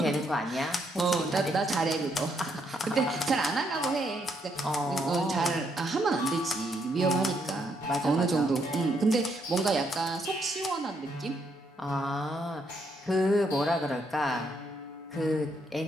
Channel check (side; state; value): both; normal; correlation 0.75